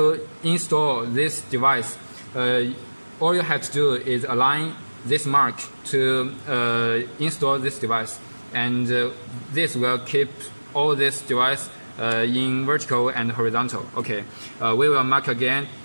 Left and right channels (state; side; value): inverted; both; correlation -1.00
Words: install this device, all you have to do is align this mark to install this device, and this will keep all this device in vertical and horizontal. Okay, we will mark again,